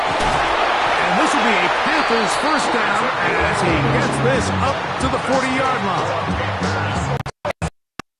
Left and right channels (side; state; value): both; identical; correlation 1.00